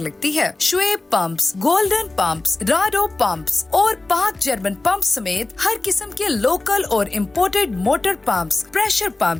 है। Shoaib pumps, golden pumps, Rado pumps और पाक जर्मन पंप समेत हर किस्म के लोकल और imported motor pumps, pressure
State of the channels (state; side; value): quieter; right; 3.1 dB